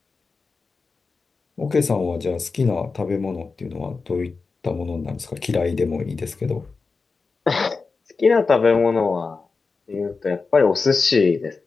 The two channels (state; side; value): quieter; right; 4.4 dB